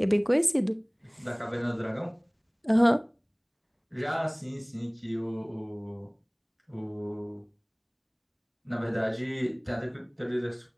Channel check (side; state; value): both; identical; correlation 1.00